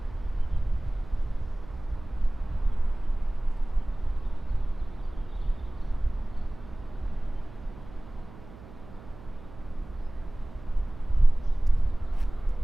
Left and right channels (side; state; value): right; noise; hum, 18 dB below the sound